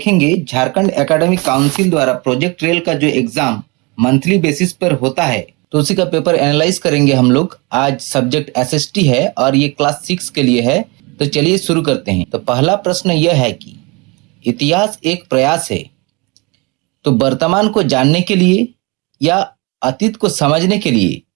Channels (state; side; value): quieter; left; 27.8 dB